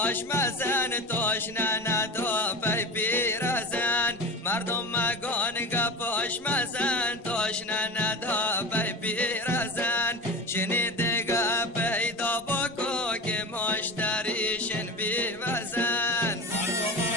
مزن تاشنه ندا پی پیرزن مردم مگان گپاش مزن تاشنه ندا پی پیرزن شنیده گپ پیدا بکو که مشتریشن بی وزن مردم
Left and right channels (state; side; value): normal; both; correlation 0.29